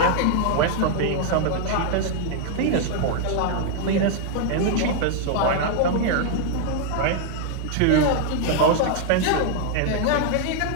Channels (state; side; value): different; both; correlation 0.00